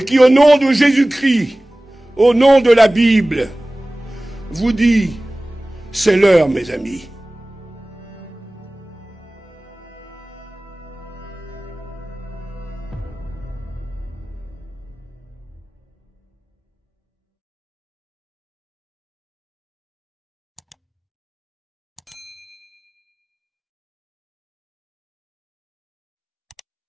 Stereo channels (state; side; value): normal; both; correlation 0.98